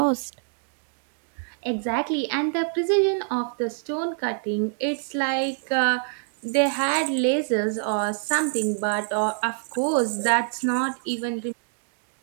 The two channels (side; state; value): left; silent; 56 dB below the other